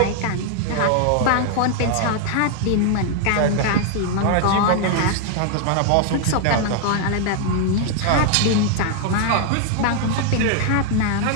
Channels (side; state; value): both; different; correlation 0.00